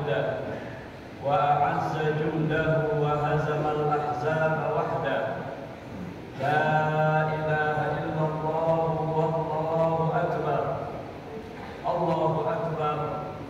wa a'azza jundahu wa hazama al-ahzaba wahdah. La ilaha illallah wallahu akbar. Allahu akbar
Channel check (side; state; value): both; identical; correlation 1.00